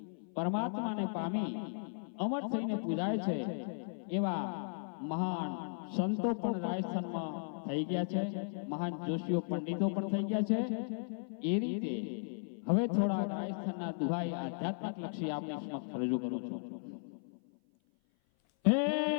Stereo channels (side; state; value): right; silent; 54 dB below the other